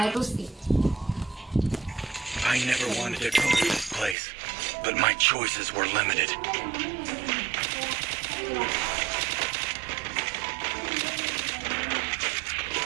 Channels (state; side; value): drops out; left; at 4.2 s